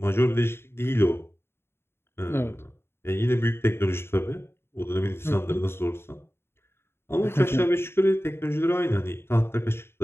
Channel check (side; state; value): right; late; 0.12 ms